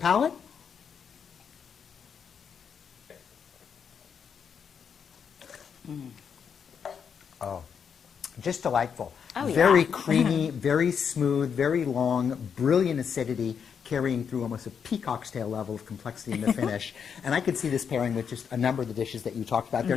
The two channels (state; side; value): quieter; right; 7.0 dB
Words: oh, just delightful. Oh, very yeah. creamy, very smooth, very long, brilliant acidity, carrying through almost a peacock's tail level of complexity in the finish. And I could see this pairing with just a number of the dishes that you talked about there.